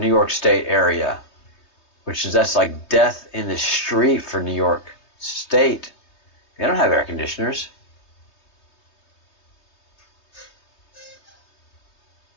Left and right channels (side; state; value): right; late; 3.2 ms